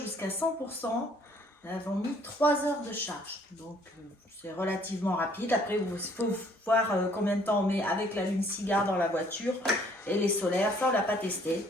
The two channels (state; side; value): normal; both; correlation 0.61